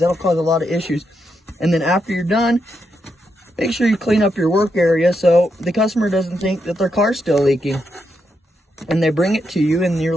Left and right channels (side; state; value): both; normal; correlation 0.82